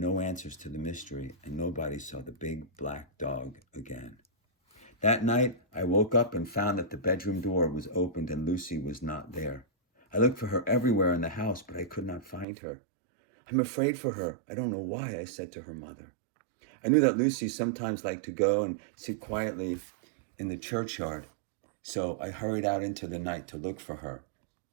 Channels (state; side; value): drops out; left; at 12.5 s